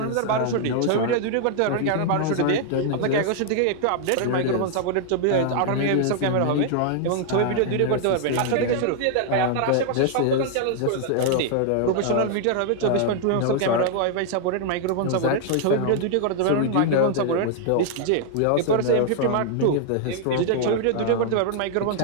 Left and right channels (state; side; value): different; both; correlation -0.01